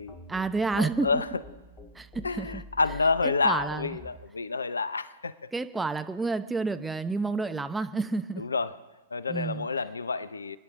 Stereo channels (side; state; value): both; normal; correlation -0.12